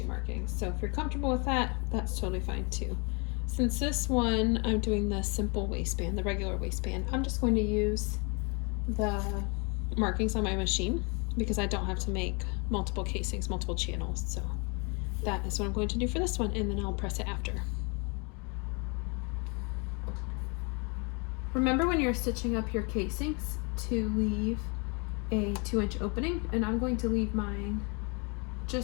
markings. So if you're comfortable with that, that's totally fine too. Since this one, I'm doing the simple waistband, the regular waistband, I'm just going to use the markings on my machine because I don't have to make multiple casings, multiple channels. So that is what I'm going to do for this one, and then I'll press it after. Remember when you're stitching up your casings to leave a 2-inch opening, and I'm going to leave mine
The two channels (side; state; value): right; quieter; 32.4 dB